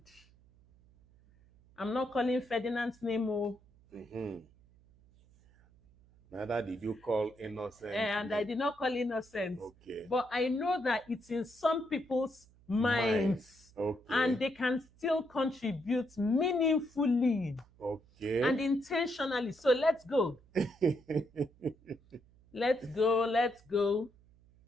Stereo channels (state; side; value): noise; right; hum, 28 dB below the sound